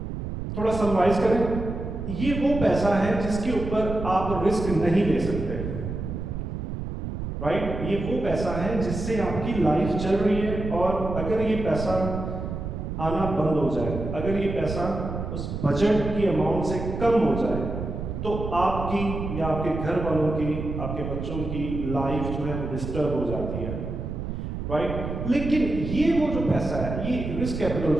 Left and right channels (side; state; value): right; noise; rumble, 5 dB below the sound